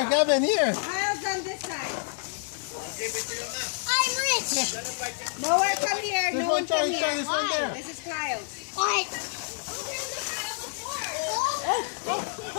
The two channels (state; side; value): silent; right; digital silence